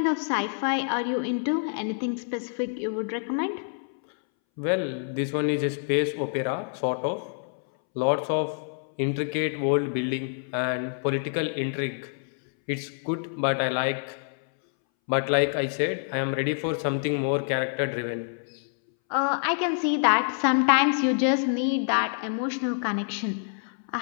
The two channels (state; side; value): silent; right; 60 dB below the other